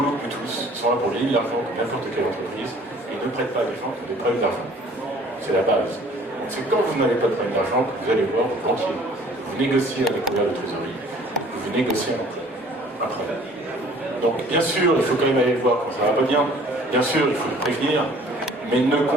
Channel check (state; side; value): normal; both; correlation 0.53